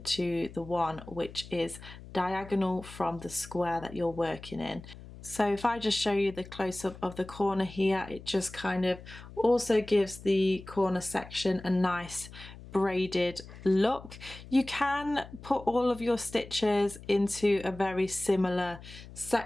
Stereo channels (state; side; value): noise; left; hum, 16 dB below the sound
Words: the one which is diagonal from the square that you're working in. So if I just show you the close-up of the corner here, it just kind of also gives the corner section a nice braided look. You can put all of your stitches into a very similar